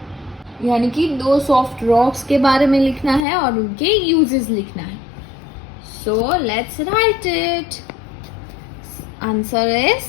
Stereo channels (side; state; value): right; drops out; at 3.2 s